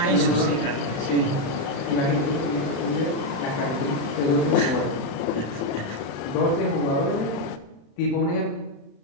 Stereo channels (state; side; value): late; right; 36 ms